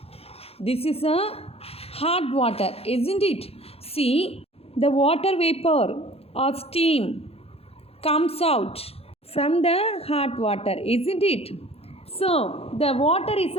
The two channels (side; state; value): right; late; 0.29 ms